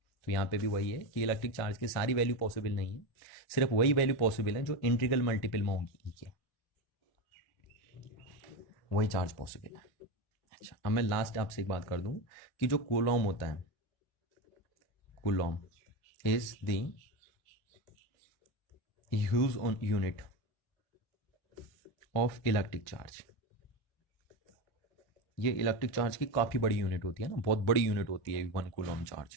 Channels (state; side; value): late; right; 1.5 ms